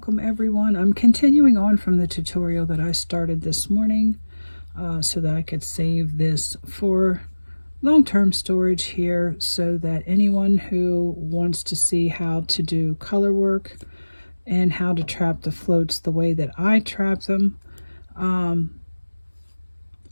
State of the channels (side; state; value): both; inverted; correlation -1.00